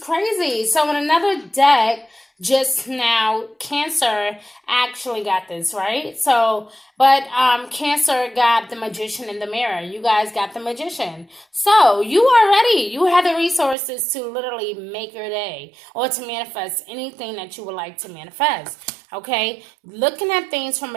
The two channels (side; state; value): left; drops out; at 13.8 s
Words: So in another deck, just now, Cancer actually got this, right? So, but Cancer got the Magician in the mirror. You guys got the Magician. So you are ready. You have the resources to literally make your day or to manifest anything that you would like to manifest. Okay, looking at things from